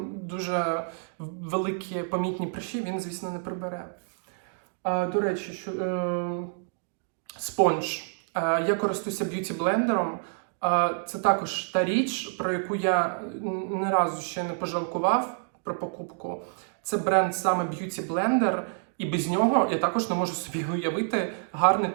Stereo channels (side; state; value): left; silent; digital silence